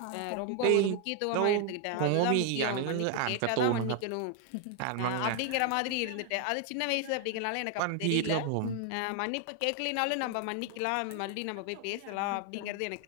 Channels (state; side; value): different; both; correlation 0.01